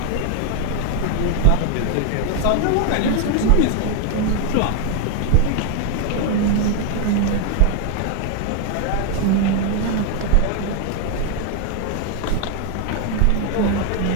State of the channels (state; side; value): different; both; correlation 0.01